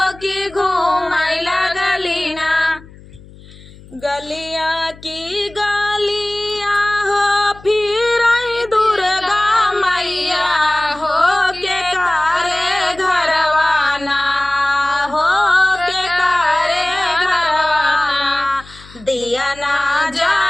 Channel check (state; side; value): noise; left; hum, 21 dB below the sound